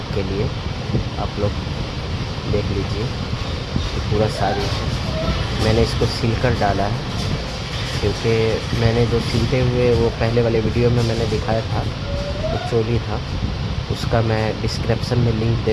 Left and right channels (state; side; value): identical; both; correlation 1.00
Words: के लिए, आप लोग देख लीजिए। ये पूरा साड़ी है, मैंने इसको सिल कर डाला है क्योंकि मैंने जो सिलते हुए वो पहले वाले वीडियो में मैंने दिखाया था वो चोली था, उसका मैं डिस्क्रिप्शन में लिंक